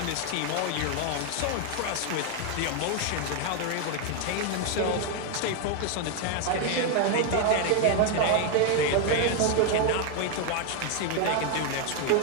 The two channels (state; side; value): different; both; correlation 0.01